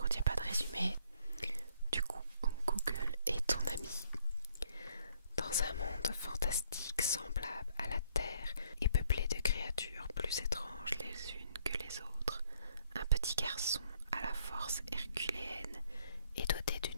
il n'y a pas de résumé. Du coup, Google est ton ami. Dans un monde fantastique semblable à la Terre et peuplé de créatures plus étranges les unes que les autres, un petit garçon à la force herculéenne et doté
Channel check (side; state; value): both; inverted; correlation -0.66